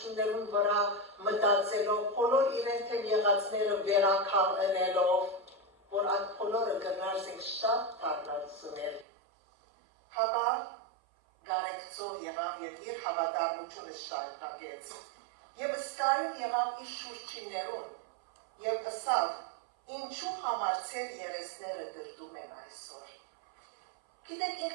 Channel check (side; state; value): left; drops out; at 9.1 s